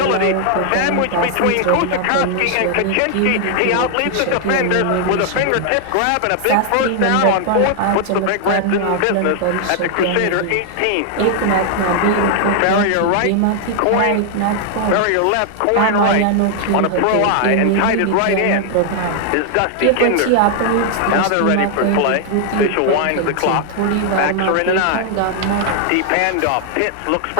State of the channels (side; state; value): both; different; correlation 0.00